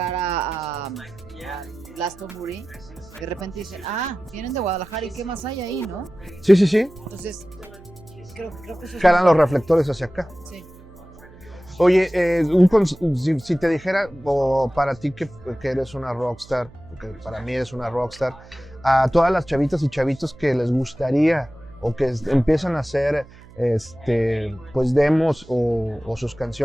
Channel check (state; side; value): noise; right; hum, 22 dB below the sound